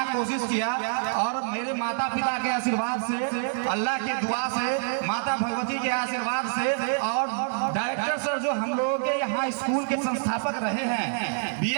कोशिश किया और मेरे माता पिता के आशीर्वाद से, अल्लाह के दुआ से, माता भगवती के आशीर्वाद से और डायरेक्टर सर जो हम लोगों के यहाँ स्कूल के संस्थापक रहे हैं,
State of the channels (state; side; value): silent; left; digital silence